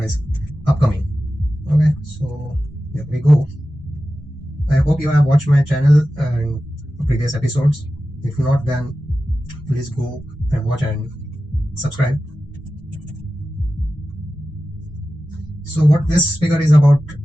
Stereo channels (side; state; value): both; normal; correlation 0.94